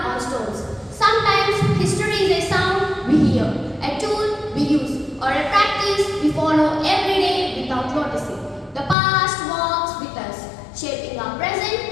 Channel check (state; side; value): drops out; right; at 9.0 s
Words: on stones. Sometimes history is a sound we hear, a tool we use, or a practice we follow every day without noticing. The past walks with us, shaping our present